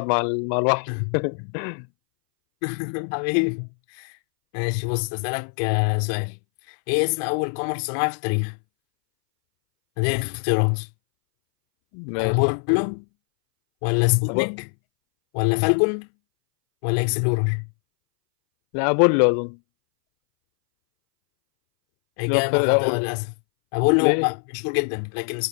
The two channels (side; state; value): right; silent; 62 dB below the other